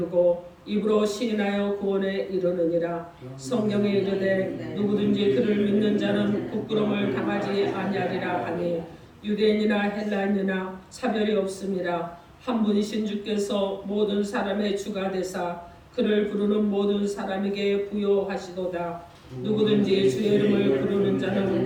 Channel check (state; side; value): identical; both; correlation 1.00